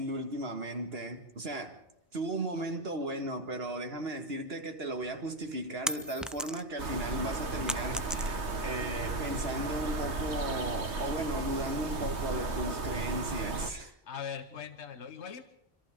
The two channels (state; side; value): normal; both; correlation 0.08